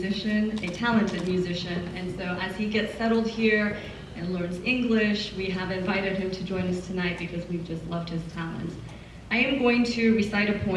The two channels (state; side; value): identical; both; correlation 1.00